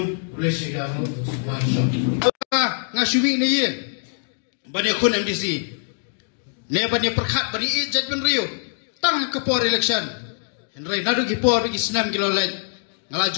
kulesigamu ngasuwi na yin banyak kun MDC ne banyak perkhat bani ijat ben rio tang ke por election henry nadu ki por ki senam kilo lain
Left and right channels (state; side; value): silent; right; digital silence